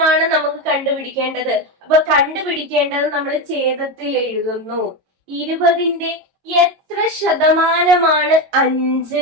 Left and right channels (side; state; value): left; late; 22 ms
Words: നമുക്ക് കണ്ടുപിടിക്കേണ്ടത്. അപ്പൊ കണ്ടുപിടിക്കേണ്ടത് നമ്മൾ ഛേദത്തിൽ എഴുതുന്നു. 20ന്റെ എത്ര ശതമാനമാണ്